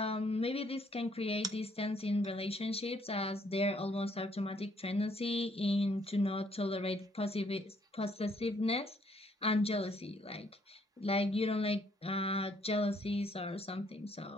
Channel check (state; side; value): normal; both; correlation 0.67